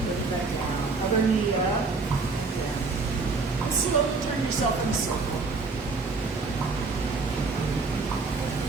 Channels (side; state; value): left; quieter; 4.0 dB